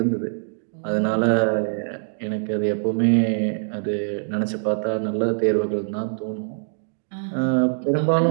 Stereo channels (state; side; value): silent; left; digital silence